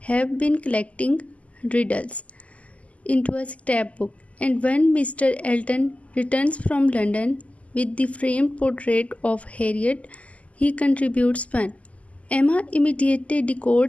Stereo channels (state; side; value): late; right; 0.068 ms